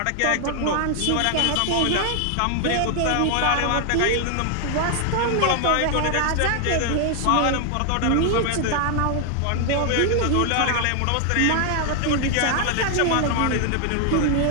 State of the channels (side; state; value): both; different; correlation 0.00